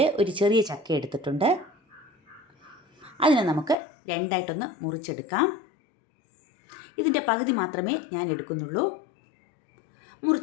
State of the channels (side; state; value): right; drops out; at 3.8 s